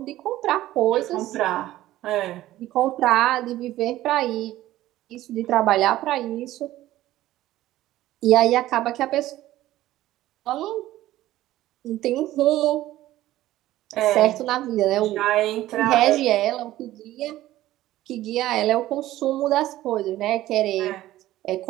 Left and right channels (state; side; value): quieter; left; 15.0 dB